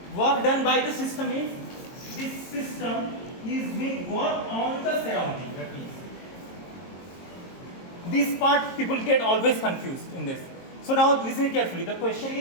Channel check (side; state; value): right; late; 22 ms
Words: Work done by the system is, this system is doing work on the surrounding. That is, this part people get always confused in this. So now listen carefully. The question